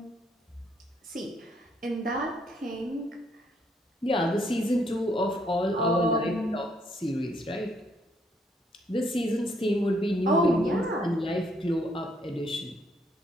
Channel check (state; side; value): normal; both; correlation 0.70